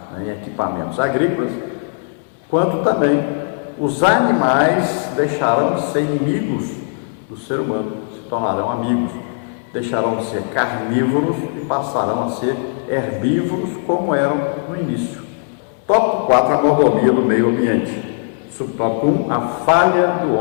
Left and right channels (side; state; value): right; silent; digital silence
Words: né, em equipamentos agrícolas, quanto também os animais deixarão de ser inimigos do ser humano, se tornarão amigos, deixarão de ser carnívoros e passarão a ser herbívoros como eram no início. Tópico 4, a mordomia do meio ambiente. Subtópico 1, a falha do